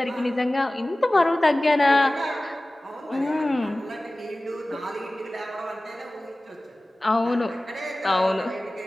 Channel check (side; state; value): both; normal; correlation 0.97